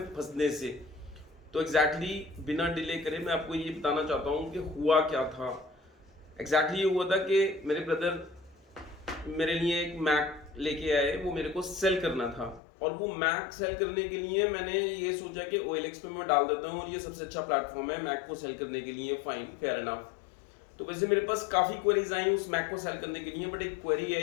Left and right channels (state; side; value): drops out; right; at 12.6 s